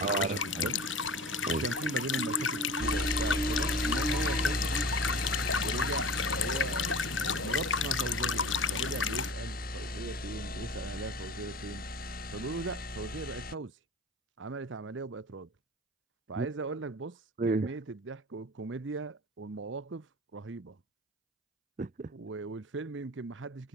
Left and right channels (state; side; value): normal; both; correlation 0.37